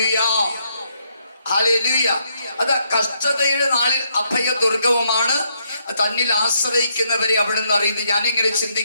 hallelujah. അത് കഷ്ടതയുടെ നാളിൽ അഭയ ദുർഗവുമാണ്, തന്നിൽ ആശ്രയിക്കുന്നവരെ അവിടുന്ന് അറിയുന്നത്. ഞാനിങ്ങനെ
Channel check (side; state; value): both; inverted; correlation -0.75